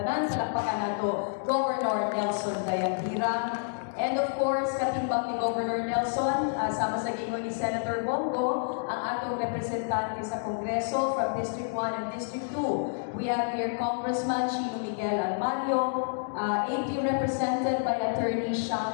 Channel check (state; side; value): silent; right; digital silence